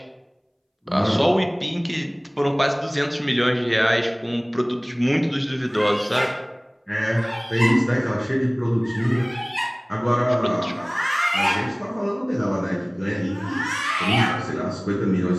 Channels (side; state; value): both; identical; correlation 1.00